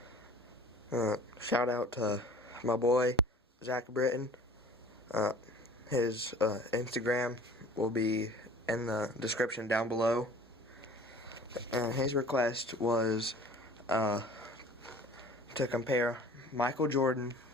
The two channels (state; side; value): normal; both; correlation 0.46